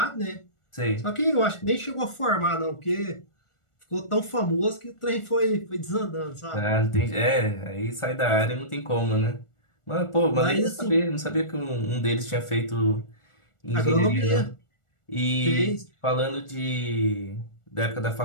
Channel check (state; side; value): late; right; 1.4 ms